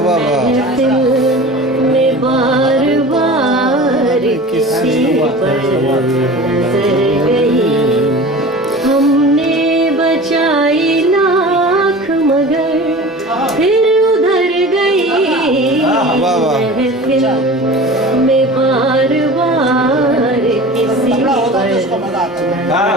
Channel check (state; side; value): normal; both; correlation 0.37